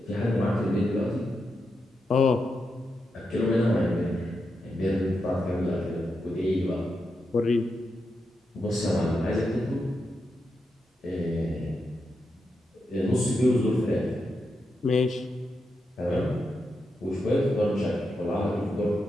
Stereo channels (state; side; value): normal; both; correlation 0.86